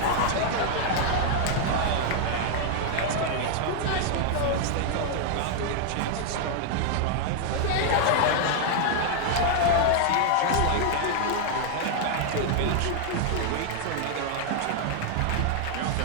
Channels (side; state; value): both; different; correlation 0.00